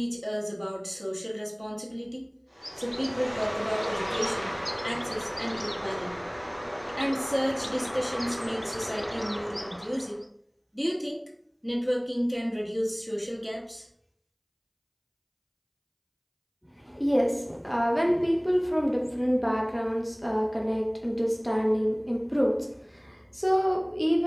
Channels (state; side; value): identical; both; correlation 1.00